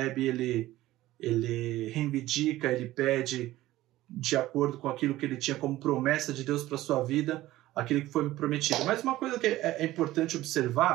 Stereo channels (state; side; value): quieter; left; 16.1 dB